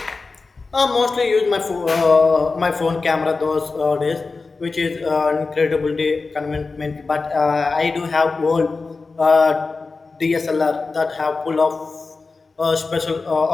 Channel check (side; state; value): right; quieter; 4.0 dB